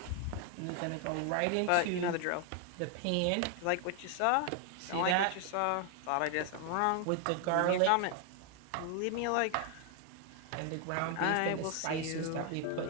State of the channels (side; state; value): both; different; correlation 0.00